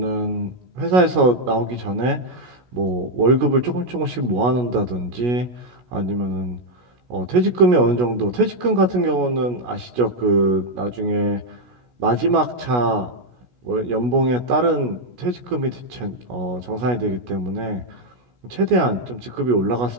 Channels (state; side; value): late; left; 16 ms